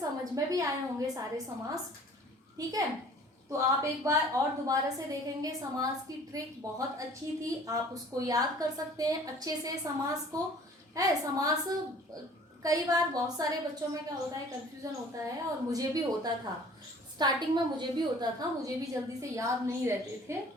में भी आए होंगे सारे समास, ठीक है। तो आप एक बार और दोबारा से देखेंगे, समास की ट्रिक बहुत अच्छी थी, आप उसको याद कर सकते हैं अच्छे से समास को, है। समास कई बार बहुत सारे बच्चों में क्या होता है, कंफ्यूजन होता है, और मुझे भी होता था स्टार्टिंग में, मुझे भी होता था, मुझे भी जल्दी से याद नहीं रहते थे।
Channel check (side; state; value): both; normal; correlation 0.50